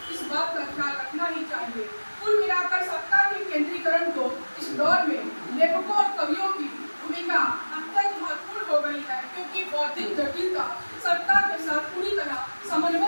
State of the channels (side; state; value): both; inverted; correlation -1.00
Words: इस बात का ख्याल रखना ही चाहिए। कुल मिलाकर सत्ता के केंद्रीकरण को इस दौर में लेखकों और कवियों की भूमिका अत्यंत महत्वपूर्ण हो गई है, क्योंकि बौद्धिक जटिलता सत्ता के साथ पूरी तरह